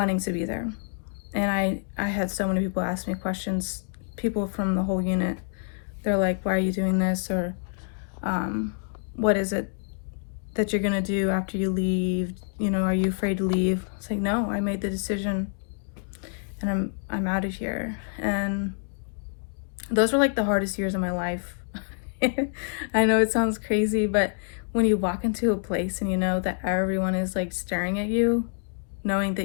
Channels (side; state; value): right; silent; 60 dB below the other